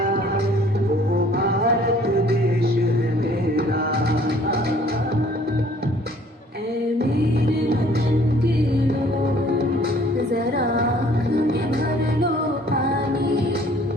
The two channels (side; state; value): both; normal; correlation 0.56